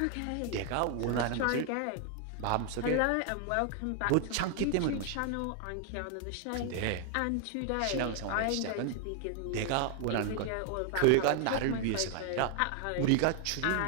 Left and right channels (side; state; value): both; different; correlation 0.00